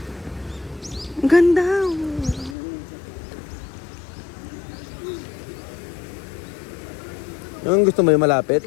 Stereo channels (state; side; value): drops out; right; at 2.6 s